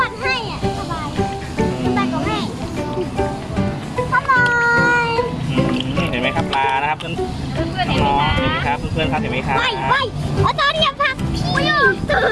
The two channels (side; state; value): both; identical; correlation 1.00